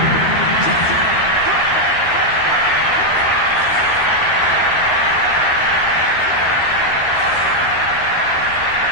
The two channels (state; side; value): late; right; 12 ms